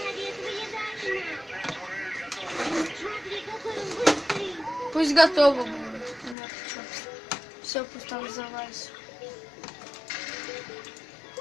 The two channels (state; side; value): drops out; right; at 6.4 s